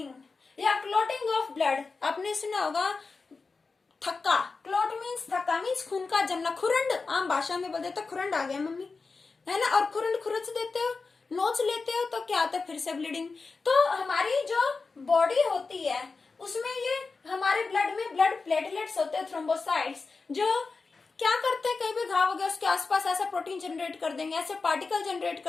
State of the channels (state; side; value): quieter; right; 4.3 dB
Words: या क्लोटिंग ऑफ ब्लड। आपने सुना होगा थक्का, क्लोट मीन्स थक्का मीन्स खून का जमना, खुरंड आम भाषा में बोलते तो खुरंड आ गया मम्मी, है ना, और खुरंड खुरच देते हो, नोच लेते हो, तो क्या होता है? फिर से ब्लीडिंग। तो हमारी जो बॉडी होती है उसमें ये हमारे ब्लड में ब्लड प्लेटलेट्स होते हैं, थ्रोम्बोसाइट्स, जो क्या करते हैं? कहीं भी घाव हो गया उसके आसपास ऐसा प्रोटीन जनरेट कर देंगे, ऐसे पार्टिकल जनरेट